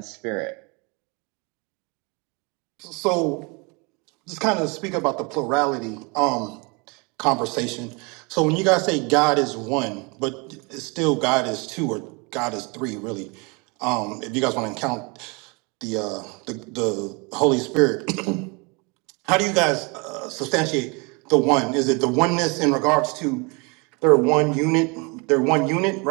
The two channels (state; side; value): quieter; left; 30.1 dB